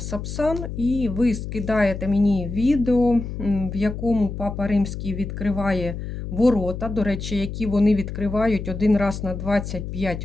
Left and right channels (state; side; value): noise; left; hum, 7 dB below the sound